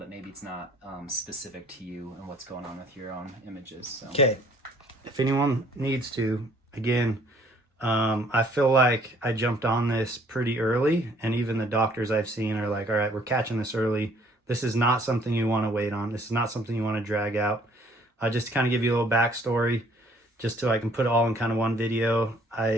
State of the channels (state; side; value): normal; both; correlation 0.60